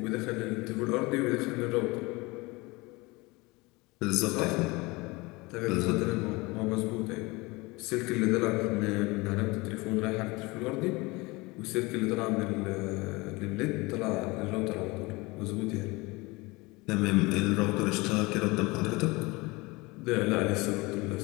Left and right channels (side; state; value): right; quieter; 23.8 dB